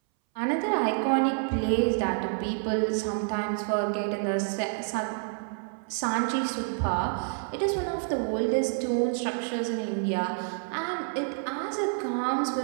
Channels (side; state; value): left; silent; 59 dB below the other